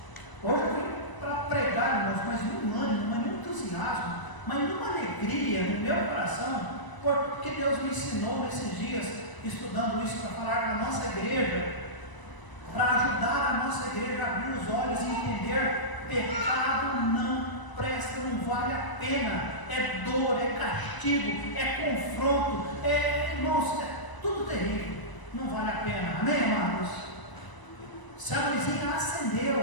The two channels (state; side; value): late; right; 1.0 ms